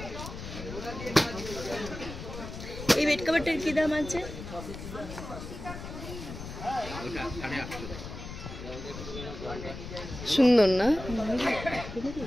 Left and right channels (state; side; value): noise; left; rumble, 10 dB below the sound